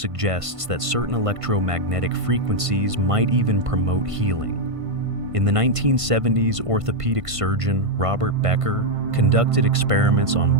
that certain electromagnetic frequencies might even promote healing. In the 1970s, orthopedic surgeon Robert Becker conducted experiments on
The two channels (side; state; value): left; late; 1.5 ms